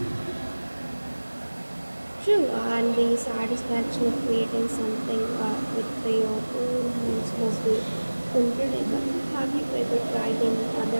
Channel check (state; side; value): inverted; both; correlation -1.00